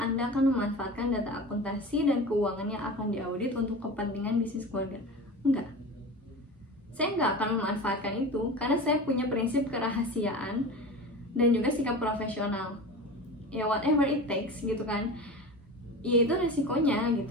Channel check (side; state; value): both; normal; correlation 0.32